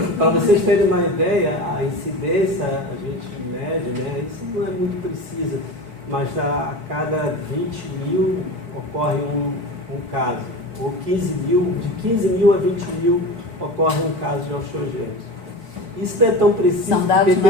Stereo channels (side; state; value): left; late; 4.2 ms